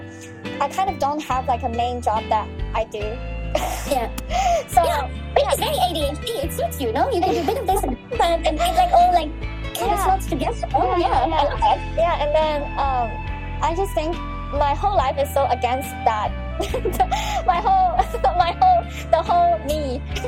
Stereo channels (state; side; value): identical; both; correlation 1.00